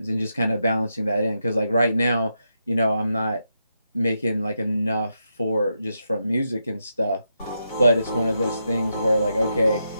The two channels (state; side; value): inverted; both; correlation -0.84